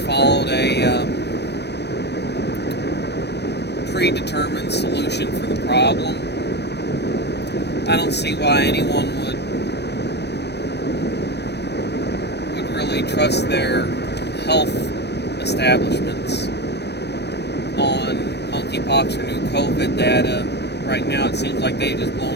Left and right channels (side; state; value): right; late; 0.49 ms